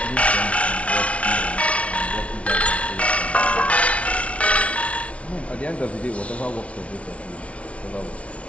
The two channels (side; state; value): right; late; 0.063 ms